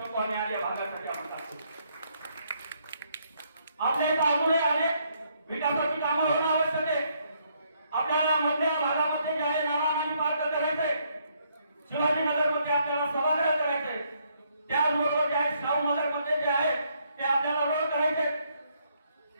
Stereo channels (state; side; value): inverted; both; correlation -0.72